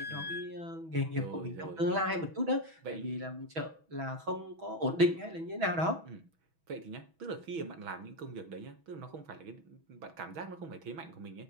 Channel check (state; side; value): late; left; 6.2 ms